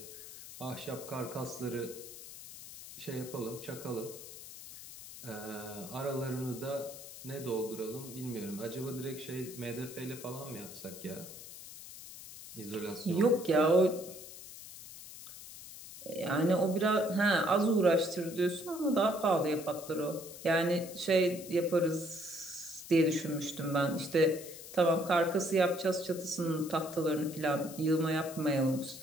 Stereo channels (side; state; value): left; noise; hiss, 14 dB below the sound